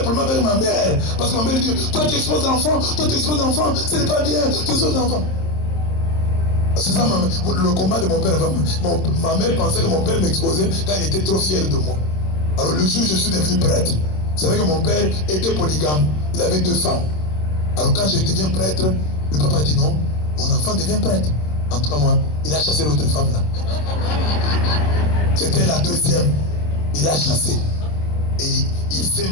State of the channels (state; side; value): late; right; 26 ms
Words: problème avec ma mère parce que ma mère dit toi tu exposes l'enfant, ce n'est pas bien, tu exposes l'enfant. C'est ça le combat de mon père. Ma mère pensait que mon père m'exposait quand il était trop fier de moi. Alors le jour où je suis devenu prêtre, vous savez que mon père était polygame, il avait 2 femmes. Alors quand je deviens prêtre, le papa dit non, mon enfant devient prêtre. En tout cas moi, il a chassé l'autre femme là. C'était la 2e. Il a chassé. Et il s'est